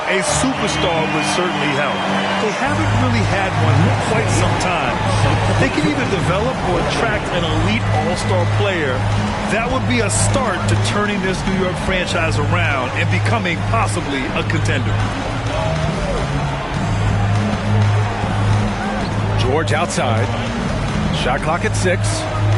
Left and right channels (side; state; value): both; identical; correlation 1.00